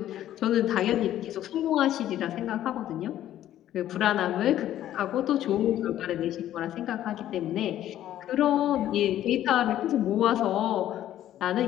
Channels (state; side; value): quieter; right; 12.4 dB